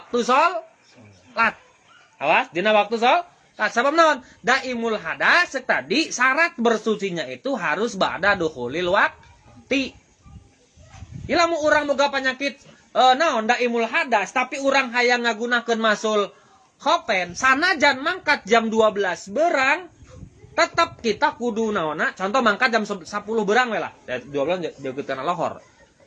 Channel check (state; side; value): identical; both; correlation 1.00